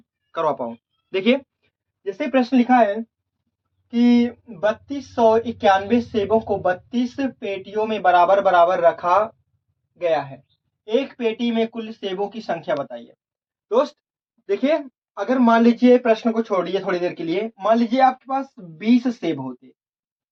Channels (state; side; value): identical; both; correlation 1.00